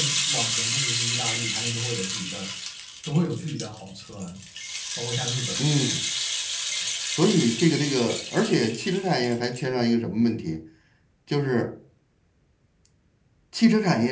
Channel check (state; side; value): identical; both; correlation 1.00